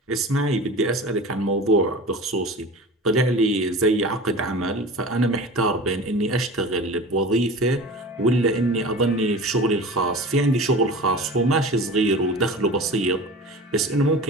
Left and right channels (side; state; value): both; normal; correlation 0.36